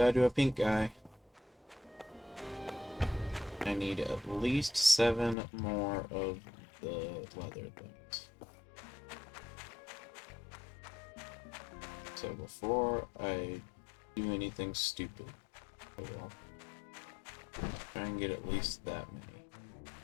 to a pink guy. I need at least 7 more of the leather things. So before I do anything stupid, I will try and get at least that many.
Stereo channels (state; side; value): drops out; right; at 5.4 s